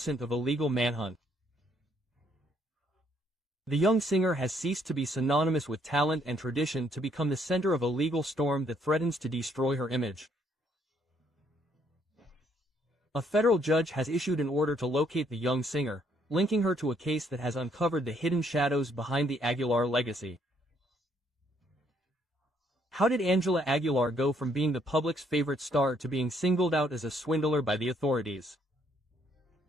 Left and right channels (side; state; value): both; normal; correlation 0.69